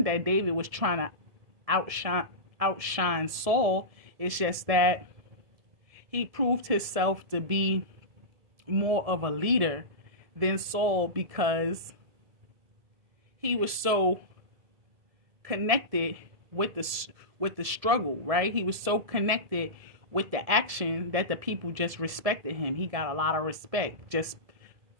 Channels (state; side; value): late; left; 1.7 ms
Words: that David was trying to outshine Saul. It's just that he proved himself to be more of a leader than Saul because he was so connected with the struggle, right? He was so connected with the action that the people just respected him. He got a lot of respect just